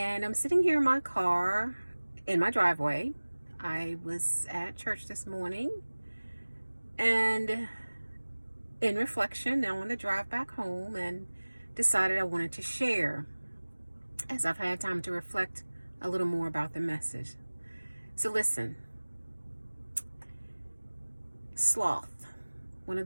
I'm sitting here in my car in my driveway. I was at church this morning, and in reflection, now on the drive back home, and decided I wanted to share as I've had time to reflect a little more about the message. So listen, sloth. One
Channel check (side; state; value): both; inverted; correlation -1.00